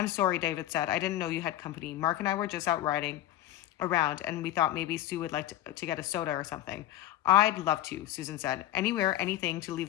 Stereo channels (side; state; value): right; quieter; 13.7 dB